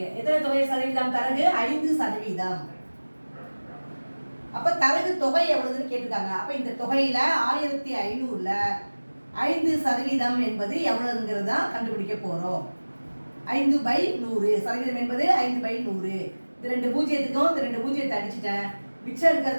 எத்தனை தொகை சதவீதம்? தரகு 5%. அப்ப தரகு தொகை எவ்வளவுன்னு கேட்டிருக்காங்க. அப்ப இந்த தொகையில 1500ல 5% என்பது எவ்வளவுங்கிறத கண்டுபிடிக்க போறோம். 5/100. சதவீதம் என்பது 5/100. இது 2 பூஜ்ஜியத்துக்கும் இந்த 2 பூஜ்ஜியத்தை அடிச்சுட்டேன். மிச்சம்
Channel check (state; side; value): inverted; both; correlation -1.00